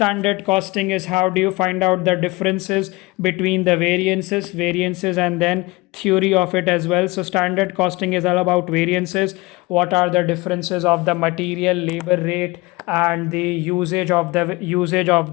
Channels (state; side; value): quieter; right; 23.2 dB